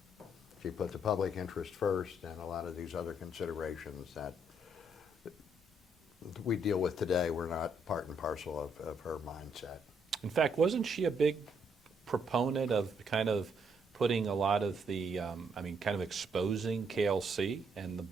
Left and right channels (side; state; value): both; normal; correlation 0.72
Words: She put the public interest first, and a lot of these other considerations that we deal with today were not part and parcel of her mindset. In fact, wasn't she a big proponent of kind of putting a lot of the, kind of exposing KLC and the